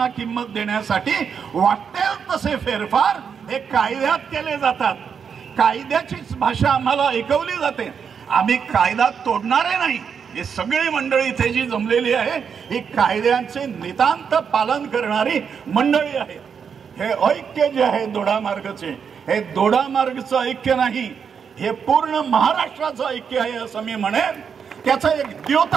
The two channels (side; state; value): left; quieter; 6.8 dB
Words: किंमत देण्यासाठी वाटेल तसे फेरफार हे कायद्यात केले जातात। कायद्याचीच भाषा आम्हाला ऐकवली जाते। आम्ही कायदा तोडणारे नाही। ही सगळी मंडळी इथे जी जमलेली आहे ही कायद्यांचे नितांत पालन करणारी मंडळी आहे। हे ऐक्य जे आहे दोडामार्गचे, हे दोडामार्गचं ऐक्य नाही, हे पूर्ण महाराष्ट्राचं ऐक्य आहे असं मी म्हणेन। त्याचा एक